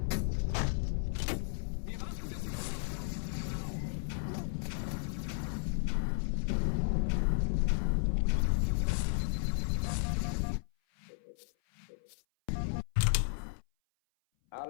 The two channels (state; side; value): silent; right; 55 dB below the other